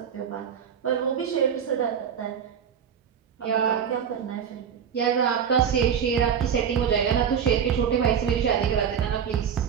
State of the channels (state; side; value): quieter; left; 7.9 dB